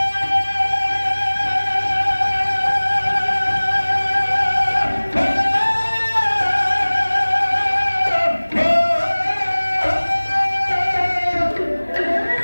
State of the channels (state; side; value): inverted; both; correlation -1.00